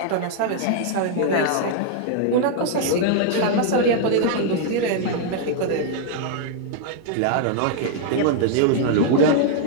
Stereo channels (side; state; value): both; different; correlation 0.00